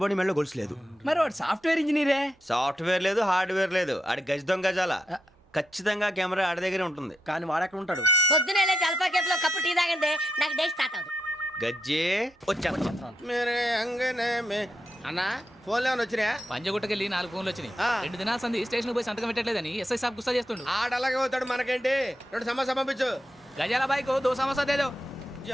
బాడీ మెడలో గొలుసు లేదు. మరి వాడు సాఫ్ట్వేర్ ఇంజనీరే. సాఫ్ట్వేర్ లేదు, హార్డ్వేర్ లేదు. ఆడి గజ దొంగ గజాల. ఖచ్చితంగా కెమెరా ఆడి దగ్గరే ఉంటుంది. కానీ వాడెక్కడ ఉంటాడు? పొద్దునే లేచి అల్పా కేఫ్ లో కప్పు టీ తాగంటే నాకు డే స్టార్ట్ అవుతుంది. గజ్జే వచ్చా. అన్నా ఫోన్లో ఏమైనా వచ్చినాయా? పంజగుట్టకెళ్ళి 4 ఫోన్లు వచ్చినాయి. 2 దినాల సంది స్టేషన్ పోయి సంతకం పెట్టలేదని ఎస్ఐ సాబ్ గుస్తా చేస్తుండు. ఆడలాగే పోతాడు, మనకేంటి? 2 సమస్య పంపించు. గజాల బైక్ 2 సమస్య దేదో.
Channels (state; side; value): normal; both; correlation 0.84